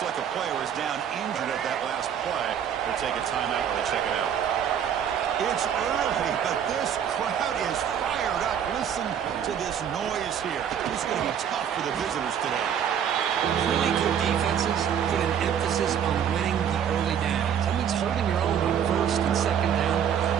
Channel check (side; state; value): left; quieter; 8.7 dB